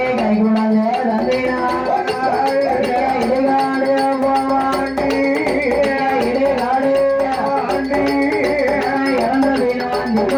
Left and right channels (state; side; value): identical; both; correlation 1.00